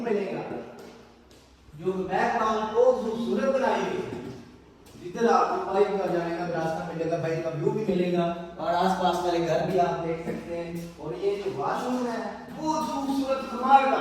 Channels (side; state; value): both; identical; correlation 1.00